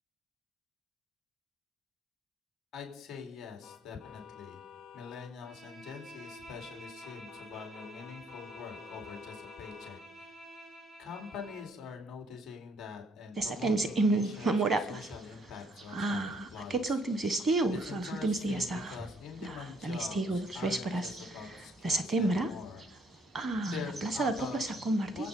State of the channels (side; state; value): both; normal; correlation 0.67